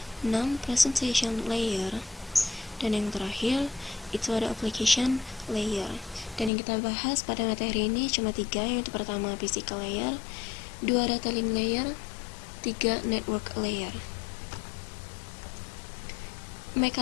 6 presentation layer, dan yang terakhir itu ada application layer. Dan yang kita bahas pada materi ini cuma 3, yaitu pertama physical layer, 2 data link layer, 3 network layer.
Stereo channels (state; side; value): drops out; right; at 6.5 s